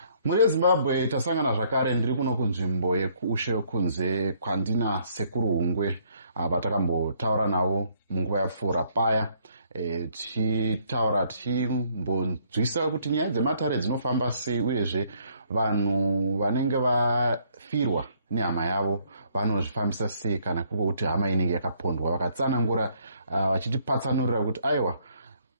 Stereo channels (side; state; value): both; inverted; correlation -0.66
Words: Muri Zimbabwe tasangana zvakare ndiri kuno kunzvimbo yekuushe kunze kwandina sekuru Hungwe vatakambotaura navo munguva yapfuura paya tichitaura tichimbonzwisa kuti nyaya dzematare dzinofamba sei uyezve vanhu vanenge vafirwa nehama yavo vanozvifambisa sei kana kuri kuti hama inenge yakapondwa vakatsanangura vachitipatsanurira kuti aiwa